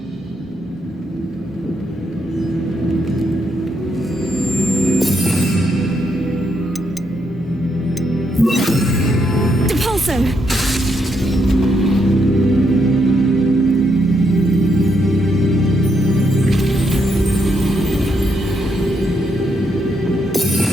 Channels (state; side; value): normal; both; correlation 0.77